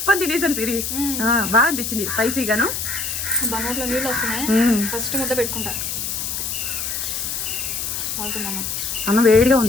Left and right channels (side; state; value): left; noise; hiss, 3 dB below the sound